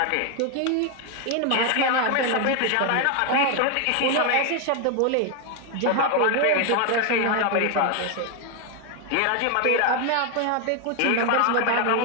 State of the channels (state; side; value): different; both; correlation 0.01